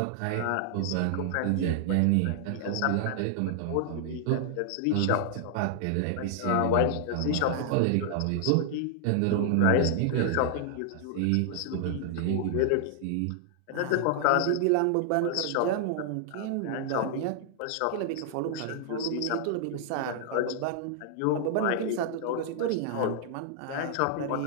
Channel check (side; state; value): both; different; correlation -0.01